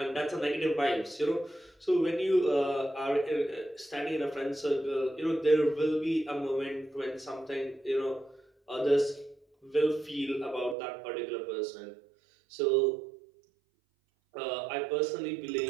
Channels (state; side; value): drops out; left; at 10.8 s